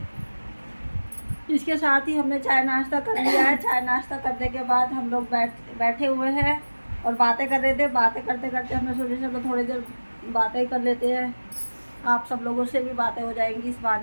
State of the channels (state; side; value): inverted; both; correlation -1.00